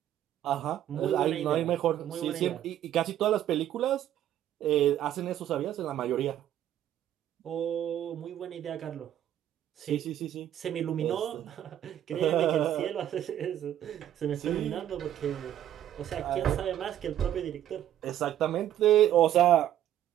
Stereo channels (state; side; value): quieter; left; 11.5 dB